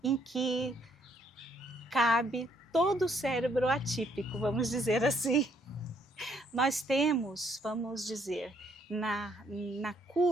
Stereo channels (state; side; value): normal; both; correlation 0.69